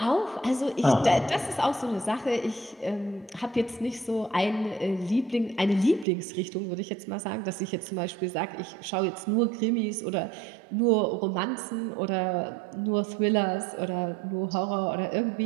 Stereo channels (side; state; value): left; drops out; at 6.1 s